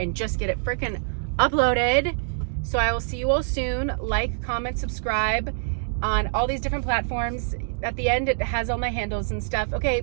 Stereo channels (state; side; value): silent; left; digital silence